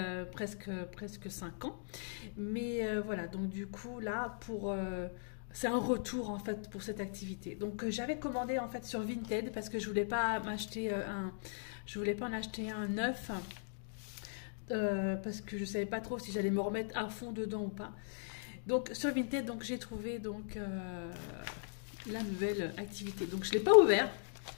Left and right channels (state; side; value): silent; right; digital silence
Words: presque 5 ans. Mais voilà, donc du coup là c'est un retour en fait pour cette activité. Donc j'avais commandé en fait sur Vinted parce que je voulais pas en acheter un neuf. Parce que je savais pas trop si j'allais me remettre à fond dedans ou pas. Donc sur Vinted, donc j'ai trouvé la nouvelle activité. Donc je l'ai pas ouvert,